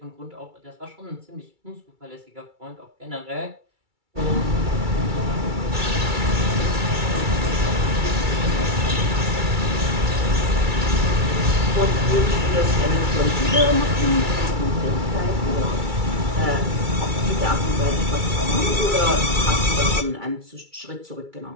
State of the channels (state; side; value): late; left; 2.3 ms